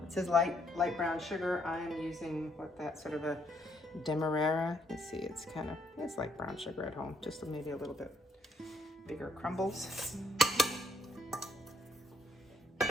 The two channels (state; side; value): normal; both; correlation 0.72